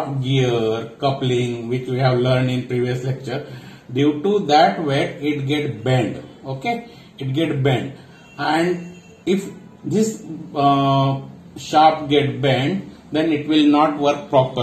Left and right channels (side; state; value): both; identical; correlation 1.00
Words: gear, coupling, which we have learned in previous lecture, due to that weight it get bent. Okay, it get bent, and if this shaft get bent, then it will not work